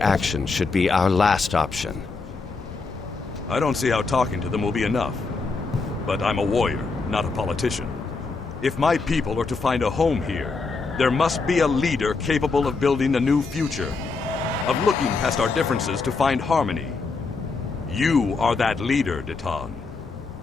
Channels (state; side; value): quieter; right; 4.2 dB